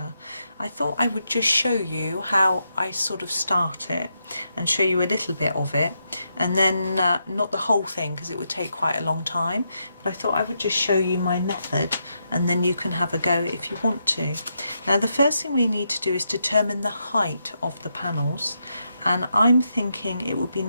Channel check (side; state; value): both; inverted; correlation -0.82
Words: I thought I would just show you how I sort of start it and show you a little bit of it, and then not the whole thing because it would take quite a long time, but I thought I would just show you my method and then you can have a go if you want to. Now the first thing we need to do is determine the height of the panels. And I'm thinking it would be